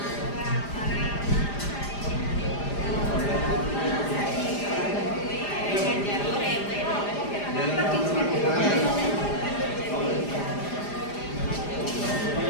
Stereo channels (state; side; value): late; right; 4.9 ms